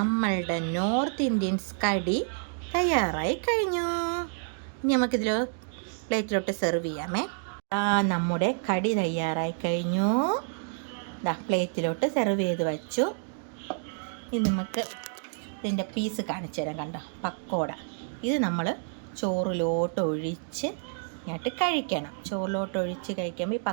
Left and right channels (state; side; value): silent; left; digital silence